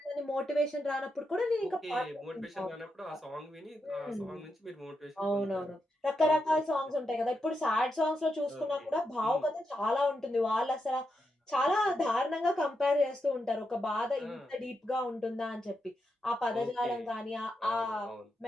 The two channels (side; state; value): both; normal; correlation 0.85